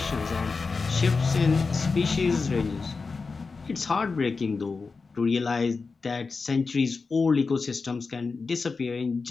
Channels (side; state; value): right; quieter; 4.4 dB